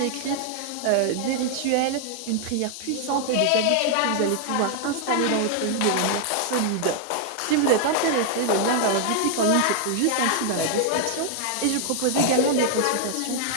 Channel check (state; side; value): different; both; correlation 0.00